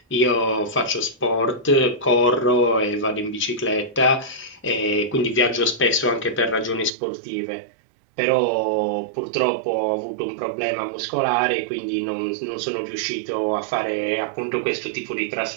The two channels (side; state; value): left; drops out; at 6.9 s